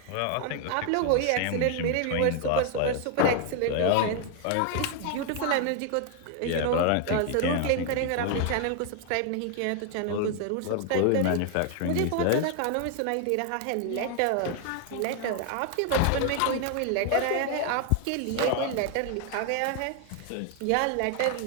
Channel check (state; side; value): different; both; correlation 0.00